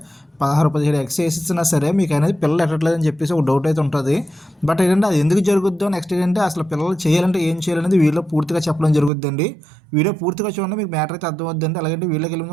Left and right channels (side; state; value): left; drops out; at 9.1 s